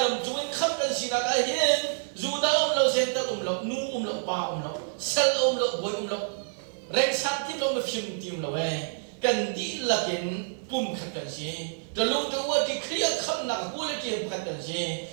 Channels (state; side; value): silent; left; 59 dB below the other